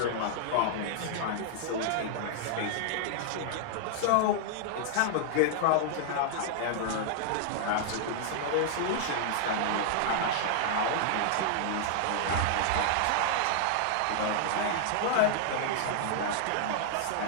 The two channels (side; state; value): both; different; correlation -0.01